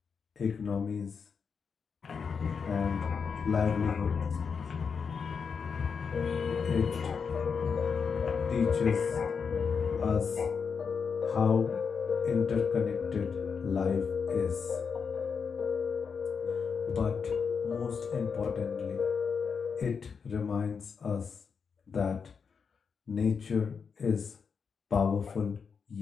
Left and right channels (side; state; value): right; quieter; 5.9 dB